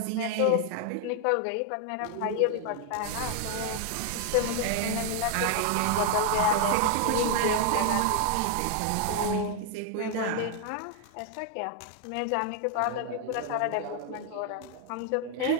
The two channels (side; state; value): both; different; correlation 0.00